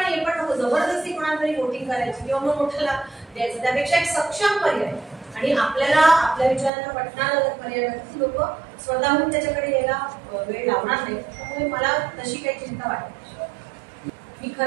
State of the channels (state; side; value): drops out; left; at 6.7 s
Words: हे पण नको जबरदस्ती कोणाला तरी वोटिंग करायची किंवा मग मोठ्याला द्यायचं, त्यापेक्षा एक सक्षम पर्याय आणि आपल्याला आपल्या विचारांना पटणारा जर पर्याय लोक स्वतःहून त्याच्याकडे यायला वेळ लावणार नाही. त्यामुळे मला तशी काही चिंता वाटत नाही. मी